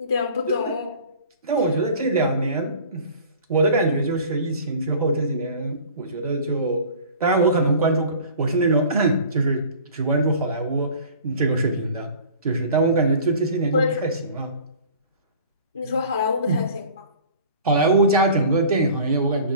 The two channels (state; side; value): inverted; both; correlation -0.45